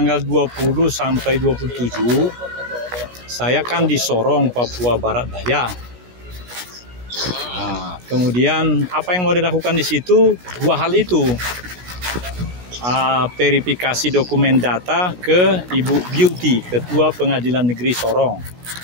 20 sampai 27 saya kan di Sorong, Papua Barat Daya. Nah, kemudian apa yang mau dilakukan di situ? Dua hal itu. Verifikasi dokumen data ke Ibu Beauty, Ketua Pengadilan Negeri Sorong.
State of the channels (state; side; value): late; left; 16 ms